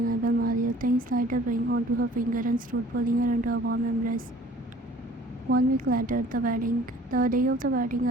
I will marry you. Things light a ring onto her finger and stood pulling her into a warm embrace. 1 week later, the day of the wedding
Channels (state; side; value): normal; both; correlation 0.51